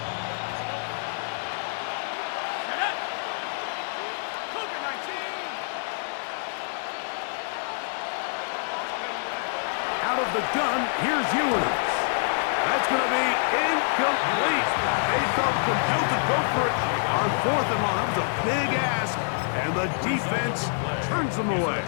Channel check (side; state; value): right; silent; 60 dB below the other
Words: Out of the gun, here's Ewers. That's going to be incomplete. They felt compelled to go for it on fourth and long. That was a big ask, and the defense turns them away.